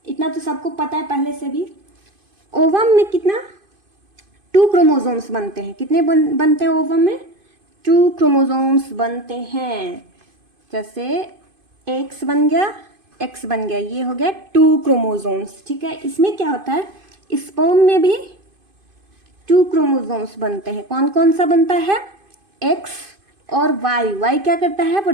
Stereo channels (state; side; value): late; left; 2.5 ms